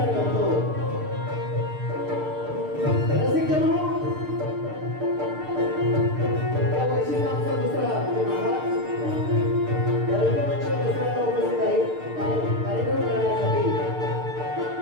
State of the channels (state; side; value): late; left; 6.6 ms